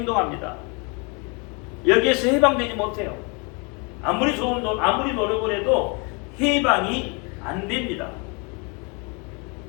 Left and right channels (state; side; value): quieter; right; 32.3 dB